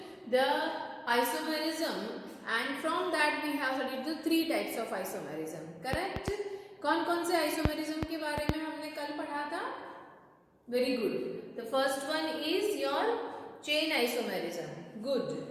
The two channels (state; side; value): identical; both; correlation 1.00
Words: isomerism, and from that we have studied the three types of isomerism. Correct? कौन कौन से isomerism के बारे में हमने कल पढ़ा था? Very good. The first one is your chain isomerism. Good.